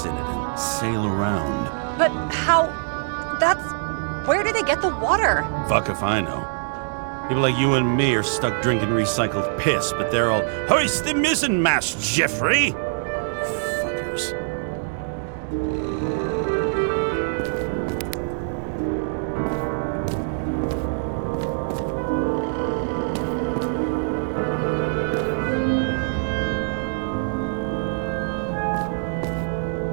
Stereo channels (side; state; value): left; silent; digital silence